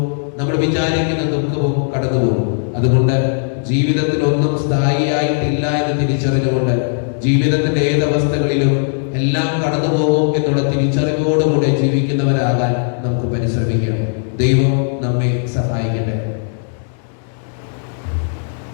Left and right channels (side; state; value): right; silent; digital silence